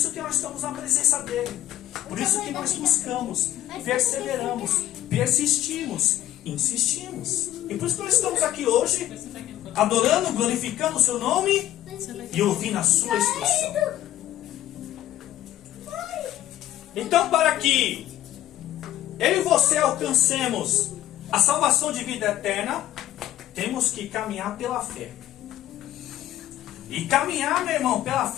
que nós estamos na presença dEle. Por isso que nós buscamos, perseveramos, persistimos, insistimos. E por isso que nós estamos aqui hoje, adorando, glorificando o seu nome e ouvindo a sua instrução. Então, para que eu e você alcancemos a salvação de vida eterna, temos que caminhar pela fé. E caminhar, meu irmão, pela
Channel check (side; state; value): right; quieter; 13.3 dB